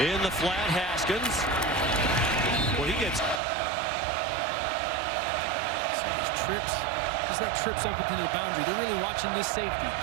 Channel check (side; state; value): left; drops out; at 3.4 s